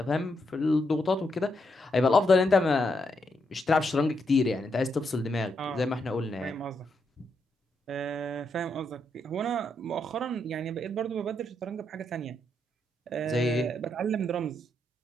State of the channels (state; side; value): normal; both; correlation 0.80